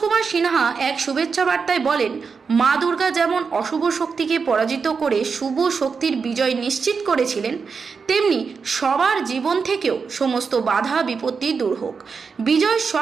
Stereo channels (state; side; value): quieter; left; 5.4 dB